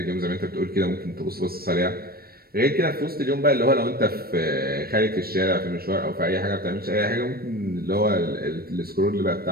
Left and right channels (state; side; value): late; left; 0.44 ms